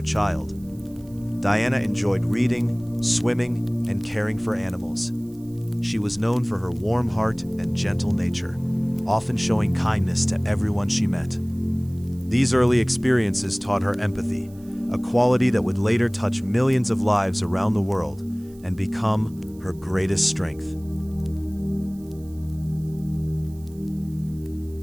child. Diana enjoyed reading, swimming, and caring for animals. She was known for her warm heart and gentle nature, often showing kindness to everyone she met. These early experiences taught her empathy, a quality that would later touch millions of lives around the world and become her greatest strength.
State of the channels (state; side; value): noise; right; hiss, 27 dB below the sound